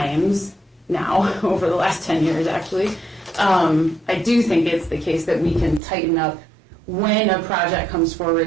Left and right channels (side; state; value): left; drops out; at 5.8 s